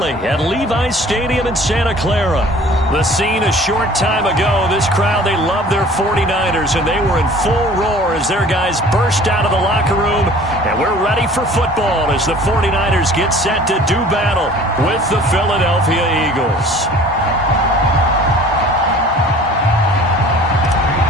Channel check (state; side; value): normal; both; correlation 0.48